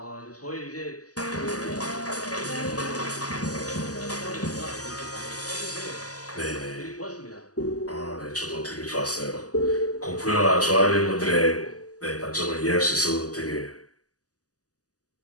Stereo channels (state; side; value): late; right; 0.67 ms